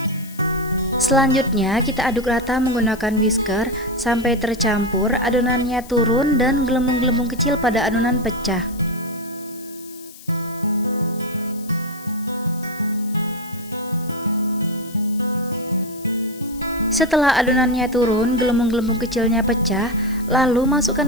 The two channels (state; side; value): noise; left; hiss, 19 dB below the sound